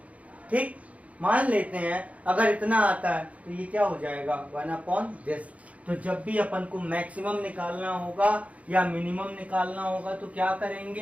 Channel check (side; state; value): left; late; 0.067 ms